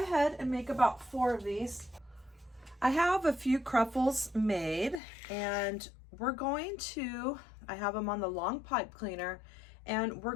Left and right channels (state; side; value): drops out; right; at 5.0 s